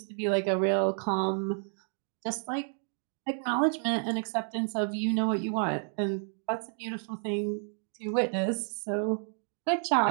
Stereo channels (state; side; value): silent; left; digital silence